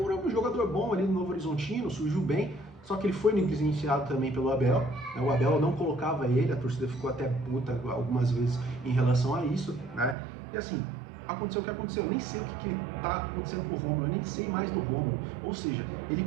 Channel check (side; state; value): left; drops out; at 10.2 s